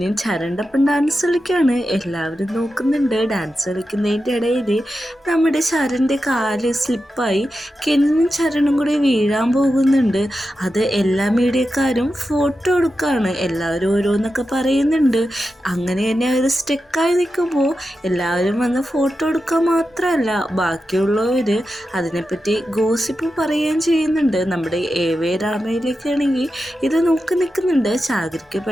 ചരണിൻ്റെ ഒപ്പം ഡാൻസ് കളിക്കുകയാണ്. എല്ലാവരും നോക്കുന്നുണ്ട്. ഡാൻസ് കളിക്കുന്നതിൻ്റെ ഇടയിൽ നമ്മുടെ ചരണിൻ്റെ കാല് സ്ലിപ്പായി കെനിനും ചരണും കൂടി വീഴാൻ പോകുന്നുണ്ട്. അത് എല്ലാ മീഡിയക്കാരും ഫോട്ടോ എടുക്കുകയാണ്. എല്ലാവരും ഓരോന്നൊക്കെ പറയുന്നുണ്ട്. അങ്ങനെ തന്നെ അവർ സ്റ്റെക്കായി നിൽക്കുമ്പോൾ എല്ലാവരും വന്ന് ഫോട്ടോ എടുക്കുക മാത്രമല്ല, ബാക്കിയുള്ളവർ അതിനെപ്പറ്റി ഗോസിപ്പ് പറയുകയും ചെയ്യുന്നുണ്ട്. നമ്മുടെ എവേ രാമയിലേക്കാണെങ്കിൽ ഇത് നോക്കി നിൽക്കുന്നുണ്ട്. ചാഗരിക്ക്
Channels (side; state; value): both; normal; correlation 0.90